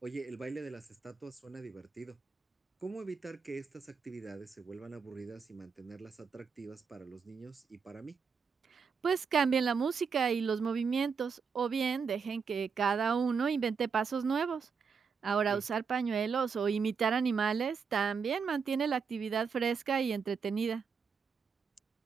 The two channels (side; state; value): left; quieter; 5.8 dB